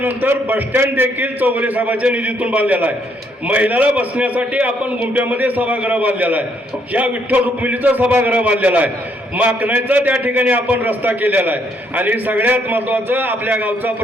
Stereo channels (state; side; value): normal; both; correlation 0.71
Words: बसस्टँड देखील चौगुले साहेबांच्या निधीतून बांधलेला आहे. महिलाला बसण्यासाठी आपण गुंप्यामध्ये सभागृह बांधलेला आहे. या विठ्ठल रुक्मिणीचा सभागृह बांधलेला आहे. माकणाचा त्या ठिकाणी आपण रस्ता केलेला आहे. आणि सगळ्यात महत्वाचं, आपल्या गावचा